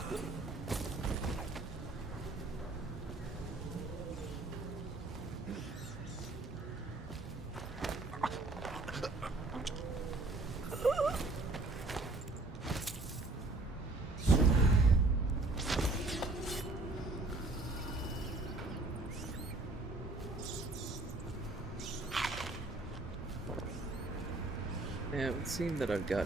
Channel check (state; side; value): quieter; left; 3.1 dB